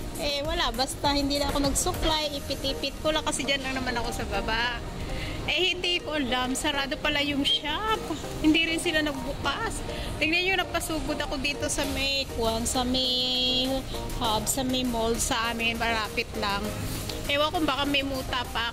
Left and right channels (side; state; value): both; identical; correlation 1.00